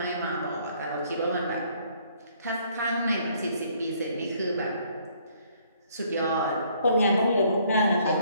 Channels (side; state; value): both; inverted; correlation -0.64